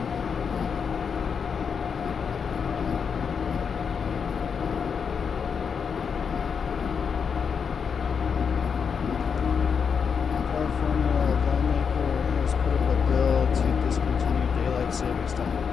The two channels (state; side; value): quieter; right; 6.4 dB